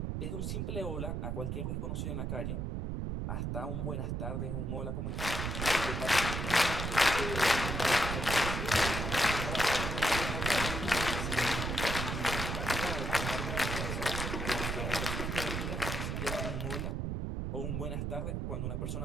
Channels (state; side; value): noise; right; rumble, 2 dB below the sound